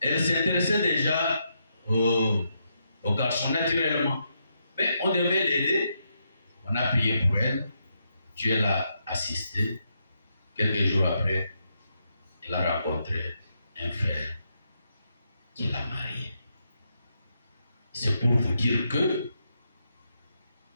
elle s'intéressait déjà aux garçons naturellement. Mais on devait l'aider. On a prié pour elle. Dieu l'a assistée. Quelques jours après, elle a rencontré un frère qui l'a mariée. C'est pour vous dire que,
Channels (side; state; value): both; inverted; correlation -0.81